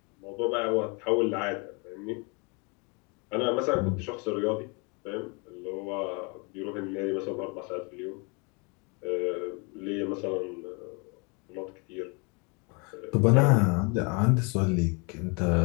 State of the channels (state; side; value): quieter; right; 32.0 dB